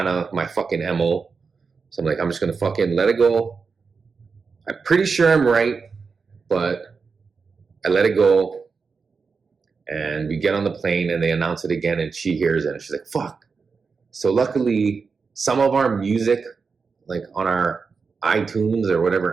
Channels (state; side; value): quieter; left; 5.0 dB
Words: of my fucking MO. So I'm like, I'm just going to fucking let it go. I'm pretty sure I'm right, but I let it go. And we get on the plane and they announce it again and she hears it and she's like, fuck. So luckily, some of our music, like on our iTunes or